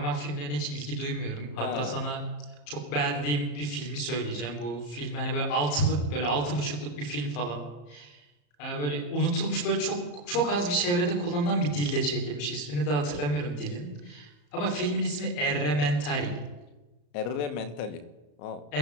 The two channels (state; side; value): late; right; 34 ms